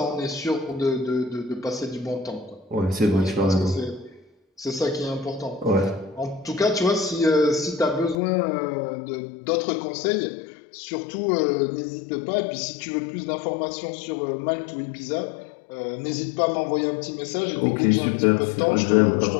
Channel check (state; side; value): drops out; right; at 8.2 s